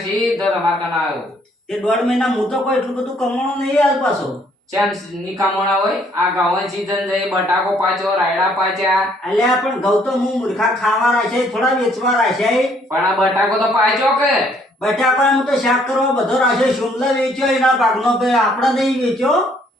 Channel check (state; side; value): normal; both; correlation 0.65